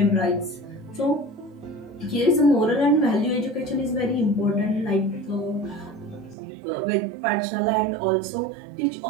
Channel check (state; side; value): drops out; left; at 6.4 s